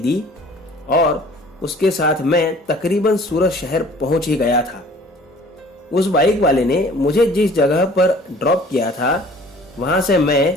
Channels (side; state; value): both; normal; correlation 0.51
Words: दी और उसके साथ मैं तकरीबन सूरत शहर पहुंच ही गया था। उस बाइक वाले ने मुझे जिस जगह पर ड्रॉप किया था, वहां से